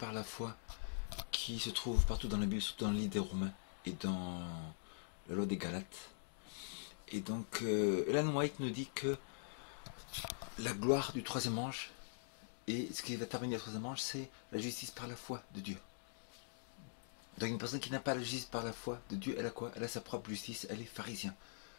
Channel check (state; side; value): silent; right; digital silence